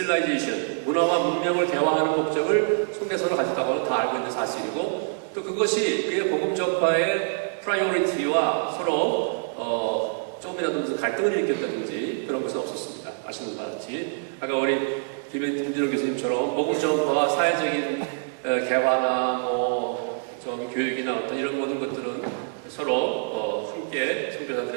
문화와 문명을 대화하는 목적을 속내서로 가졌다고는 다 알고 있는 사실이고 또 그것이 그의 복음 전파의 프라이오리티와 서로 조금이라도 무슨 갈등을 일으켰다든지 그런 것은 없었습니다. 아시는 바와 같이 아까 우리 김진호 교수님처럼 복음 전파와 사회적인 개화나 좀 교육이나 어떤 이런 모든 것들은 서로 함께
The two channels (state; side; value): silent; left; digital silence